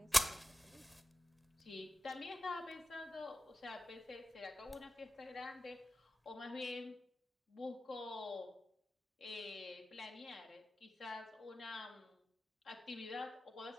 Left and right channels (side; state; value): both; normal; correlation 0.94